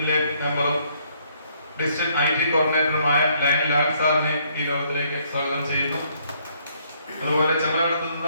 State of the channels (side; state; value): both; inverted; correlation -0.68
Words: മെമ്പറും ഡിസ്ട്രിക്ട് IT കോർഡിനേറ്ററുമായ ലയൺ ലാൽ സാറിനെ ഈ യോഗത്തിലേക്ക് സ്വാഗതം ചെയ്യുന്നു. അതുപോലെ ചെമ്മലമറ്റത്തു